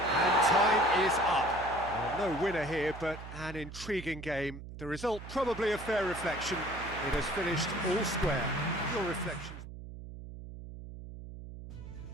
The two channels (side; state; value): right; noise; hum, 12 dB below the sound